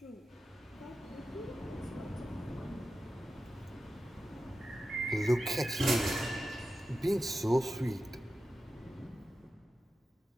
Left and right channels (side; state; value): both; normal; correlation 0.92